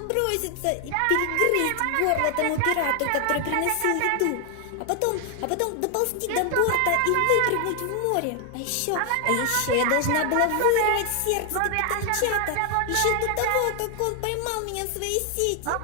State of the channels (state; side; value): different; both; correlation 0.00